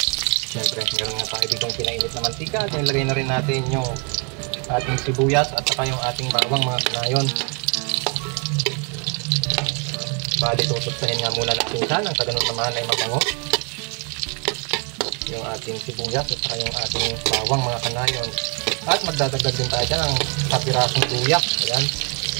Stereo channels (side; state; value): left; quieter; 35.4 dB